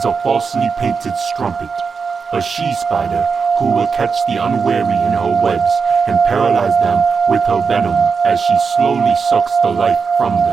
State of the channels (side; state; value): left; quieter; 5.4 dB